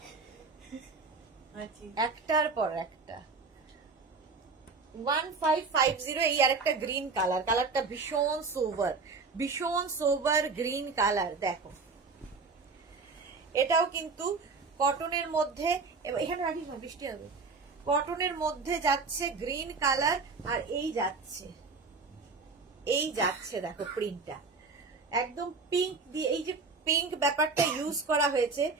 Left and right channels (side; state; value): left; quieter; 4.2 dB